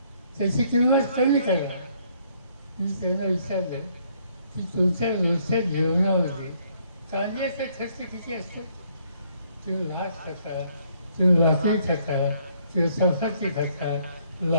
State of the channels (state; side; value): inverted; both; correlation -0.67